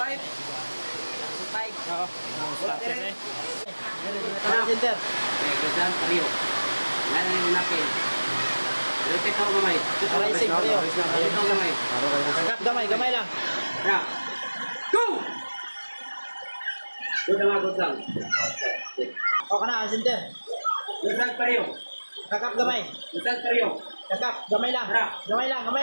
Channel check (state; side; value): inverted; both; correlation -1.00